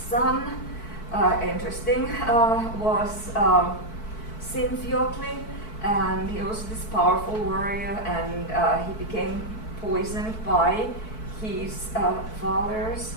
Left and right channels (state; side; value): late; right; 4.6 ms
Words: interesting, was Sinfjotli, and he was this powerful warrior, and he became poisoned by his father's